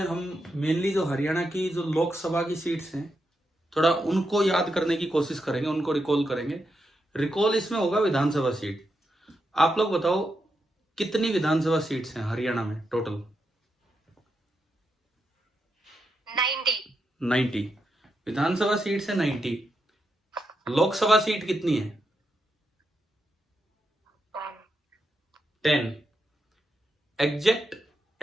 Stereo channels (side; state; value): both; normal; correlation 0.84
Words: हम मेनली जो हरियाणा की जो लोकसभा की सीट्स हैं थोड़ा उनको याद करने की कोशिश करेंगे, उनको रिकॉल करेंगे। रिकॉल इसमें होगा विधानसभा सीट। आप लोग बताओ कितनी विधानसभा सीट्स हैं हरियाणा में टोटल? 90 विधानसभा सीट्स है 90। लोकसभा सीट कितनी है? 10। एग्जैक्ट